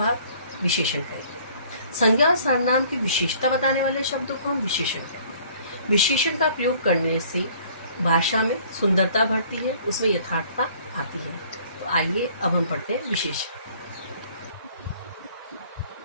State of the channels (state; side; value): inverted; both; correlation -0.55